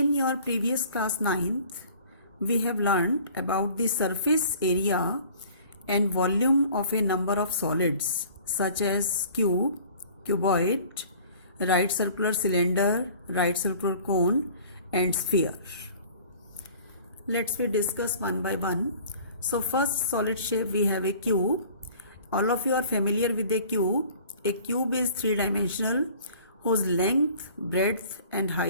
your previous class 9th, we have learned about the surface area and volume of a number of solids such as cube, cuboid, right circular cylinder, right circular cone and sphere. Let's we discuss one by one. So first solid shape we have a cube. All of you are familiar with a cube. A cube is three-dimensional whose length, breadth and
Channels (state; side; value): inverted; both; correlation -0.49